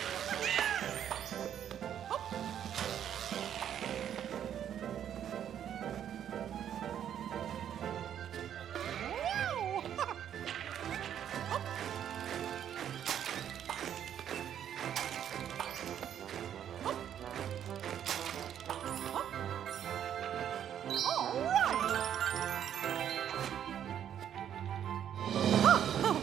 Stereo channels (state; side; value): quieter; left; 9.7 dB